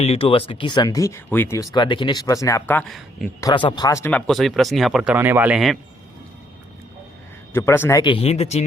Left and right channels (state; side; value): normal; both; correlation 0.69